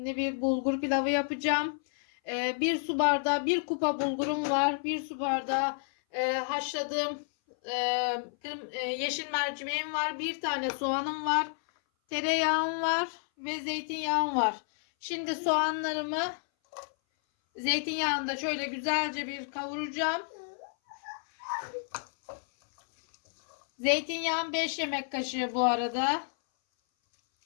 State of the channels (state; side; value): silent; right; 58 dB below the other